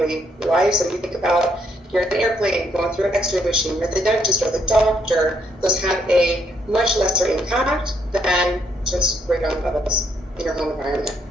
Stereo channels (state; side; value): normal; both; correlation 0.72